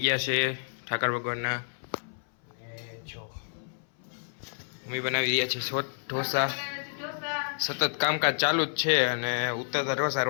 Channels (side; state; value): right; silent; 58 dB below the other